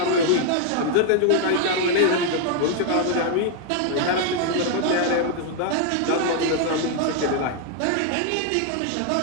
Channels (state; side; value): different; both; correlation 0.00